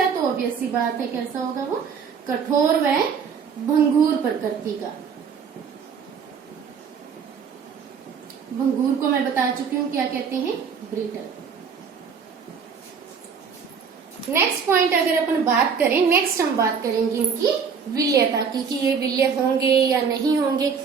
तो ऑब्वियस सी बात है कैसा होगा वो? कठोर व भंगुर प्रकृति का। भंगुर को मैं बता चुकी हूँ क्या कहते हैं? ब्रिटल। नेक्स्ट पॉइंट अगर अपन बात करें, नेक्स्ट हम बात करेंगे इनकी विलयता की, कि ये विलय होंगे या नहीं होंगे।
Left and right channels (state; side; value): quieter; left; 6.3 dB